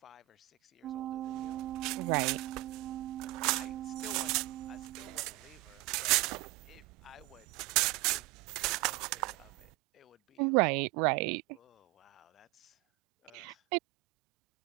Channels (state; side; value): quieter; left; 19.9 dB